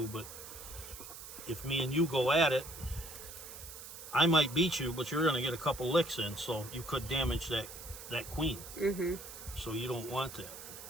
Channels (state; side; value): noise; right; hiss, 12 dB below the sound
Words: but if me and you go at it, I might beat you, but you're going to get a couple licks in, so you could damage that queen. Mm-hmm. So you don't want that.